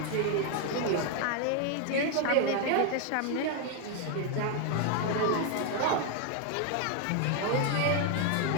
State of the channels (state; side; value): different; both; correlation 0.00